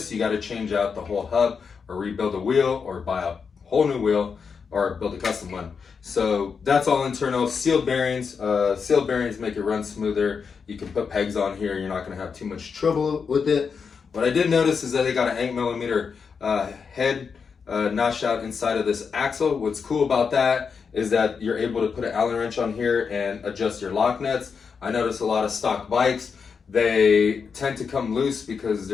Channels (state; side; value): quieter; right; 5.8 dB